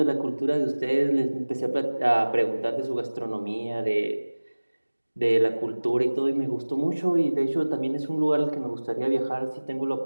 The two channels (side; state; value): both; inverted; correlation -1.00